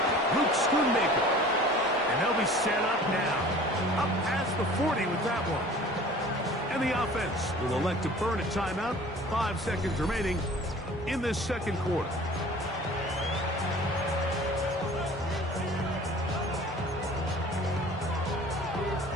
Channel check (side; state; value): both; normal; correlation 0.46